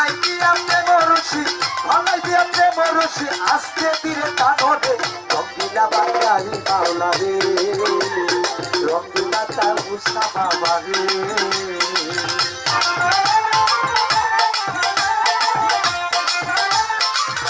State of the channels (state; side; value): identical; both; correlation 1.00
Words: দিয়া প্রেম রশি, গলাই দিয়া প্রেম রশি, আজকে দিলে কানবে রঙ্গিলা বাঙালি মাওলা রে, রঙ্গিলা তয়বসা বাবা রে।